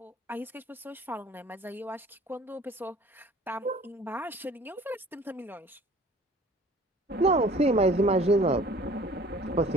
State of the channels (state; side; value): normal; both; correlation 0.50